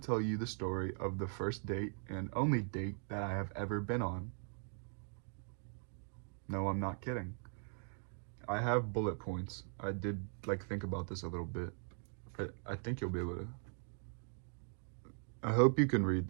tell you the story of the first date and only date that I have ever been on. No, I'm not kidding. I have bullet points. I did like think about this a little bit. I think you'll be able to. I hope you can read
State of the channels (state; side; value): silent; left; 51 dB below the other